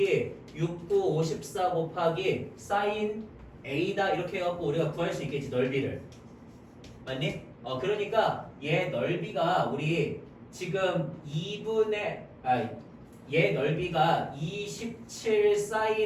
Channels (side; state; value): both; identical; correlation 1.00